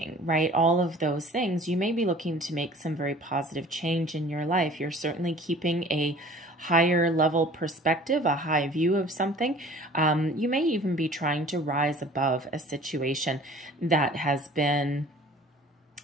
right? All of those things. You may be looking to make some very positive change in your life. You're certainly keeping a higher level perspective, a high view of something. You may even be trying to rise above a situation that has been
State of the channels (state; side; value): normal; both; correlation 0.48